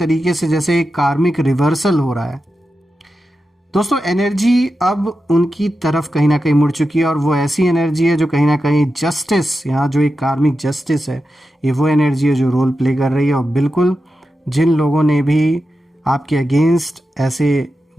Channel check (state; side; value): normal; both; correlation 0.90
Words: से जैसे एक कार्मिक रिवर्सल हो रहा है दोस्तों। एनर्जी अब उनकी तरफ कहीं ना कहीं मुड़ चुकी है, और वो ऐसी एनर्जी है जो कहीं ना कहीं जस्टिस, यहाँ जो एक कार्मिक जस्टिस है, ये वो एनर्जी है जो रोल प्ले कर रही है। और बिल्कुल जिन लोगों ने भी आपके अगेंस्ट ऐसे